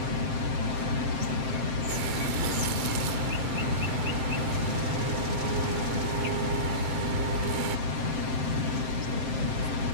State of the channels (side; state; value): left; late; 7.6 ms